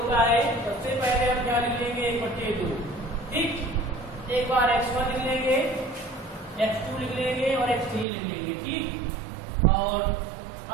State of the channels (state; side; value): drops out; left; at 8.1 s